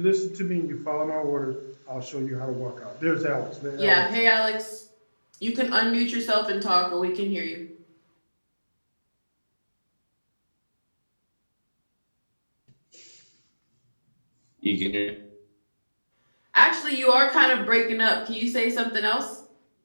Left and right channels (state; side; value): inverted; both; correlation -1.00